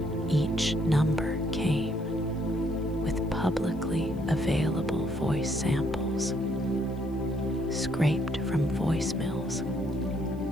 Each number came with publicly available voice samples, scraped from voicemails,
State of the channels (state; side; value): noise; left; hiss, 30 dB below the sound